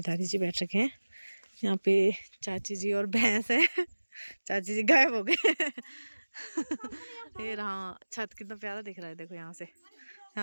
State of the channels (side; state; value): both; inverted; correlation -1.00